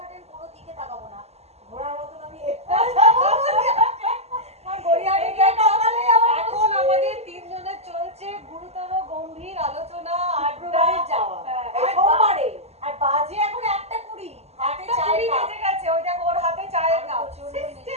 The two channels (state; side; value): late; left; 0.30 ms